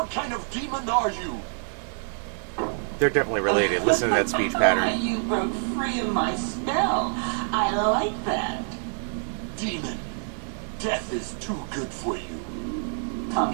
kind of demon are you? They're definitely related. Listen to that speech pattern. You broke free of my spell. I like that. Demon, death is too good for you. Come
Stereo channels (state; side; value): silent; left; 61 dB below the other